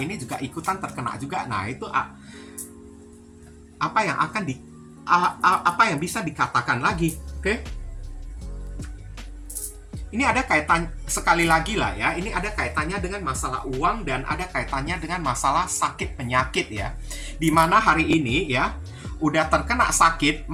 ini juga ikutan terkena juga. Nah itu apa yang akan apa yang bisa dikatakan lagi, oke? Ini ada kaitan sekali lagi lah ya, ini ada kaitannya dengan masalah uang dan ada kaitannya dengan masalah sakit penyakit ya. Dimana hari ini ya, udah terkena sakit,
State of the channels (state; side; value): identical; both; correlation 1.00